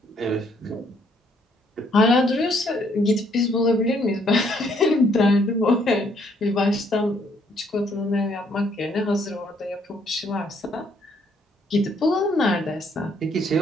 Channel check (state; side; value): normal; both; correlation 0.68